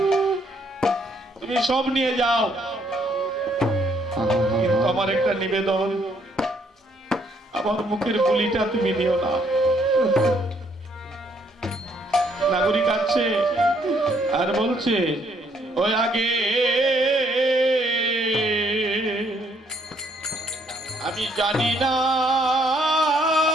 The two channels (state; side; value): normal; both; correlation 0.68